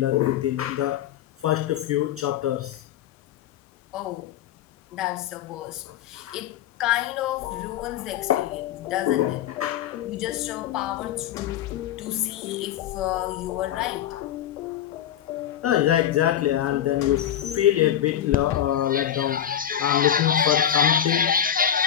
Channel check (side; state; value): right; quieter; 10.4 dB